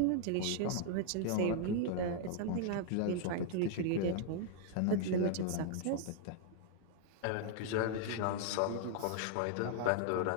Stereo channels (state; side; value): different; both; correlation -0.01